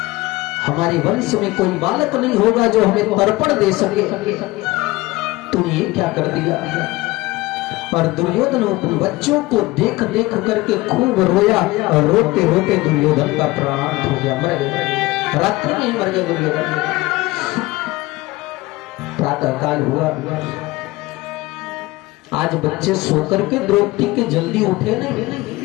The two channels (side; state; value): right; quieter; 20.1 dB